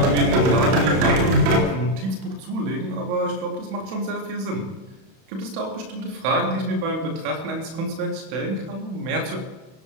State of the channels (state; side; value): late; left; 31 ms